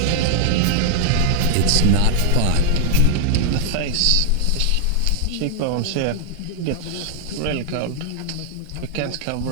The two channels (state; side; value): different; both; correlation 0.00